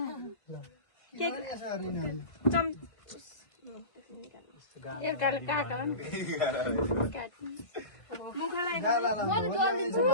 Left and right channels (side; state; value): right; late; 1.5 ms